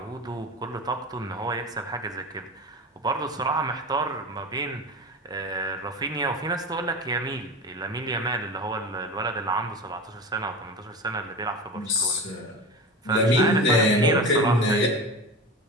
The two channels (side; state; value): both; normal; correlation 0.28